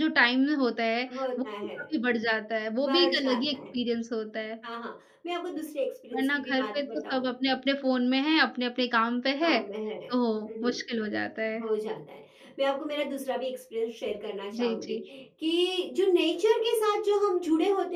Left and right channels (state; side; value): identical; both; correlation 1.00